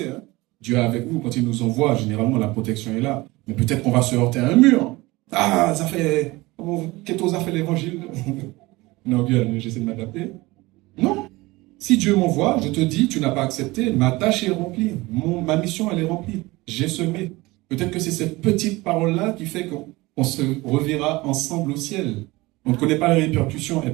Hein? Dieu est avec nous, quand il nous envoie, généralement la protection est là. Mais peut-être qu'on va se heurter à un mur. Ah, ça fait... Qu'est-ce a fait l'évangile? Non, bien, j'essaie de m'adapter. Non. Si Dieu m'envoie, je te dis, tu n'as pas accepté, ma tâche est remplie. Ma mission, elle est remplie. J'ai semé. Peut-être que c'est cette petite parole-là qui fait qu'on se reverra ensemble au ciel. On ne connaît pas les répercussions, elles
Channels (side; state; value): left; quieter; 21.2 dB